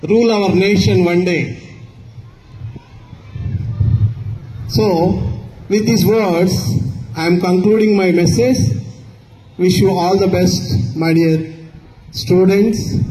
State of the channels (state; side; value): identical; both; correlation 1.00